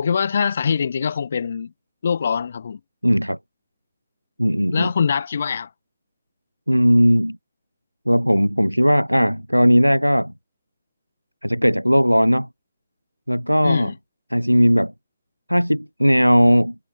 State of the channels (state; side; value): inverted; both; correlation -0.98